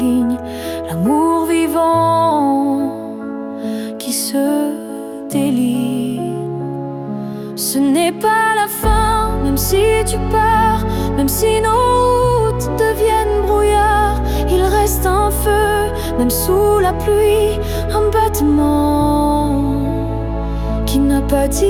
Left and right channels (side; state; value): both; identical; correlation 1.00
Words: l'amour vivant qui se délie. Ce n'est pas la fin, même si tu pars, même si nos routes deviennent brouillard. Il reste un feu, même sous la pluie, un battement qui n'a pas